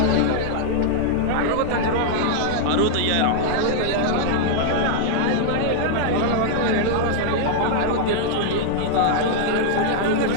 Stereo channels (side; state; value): both; different; correlation -0.01